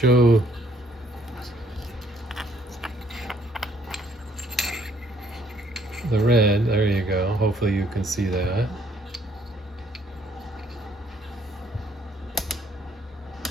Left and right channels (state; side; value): normal; both; correlation 0.66